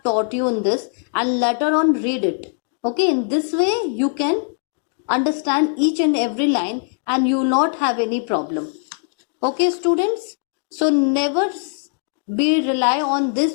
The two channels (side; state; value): right; silent; digital silence